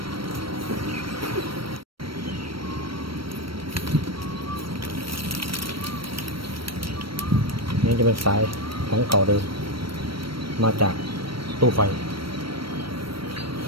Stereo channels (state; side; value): late; left; 0.74 ms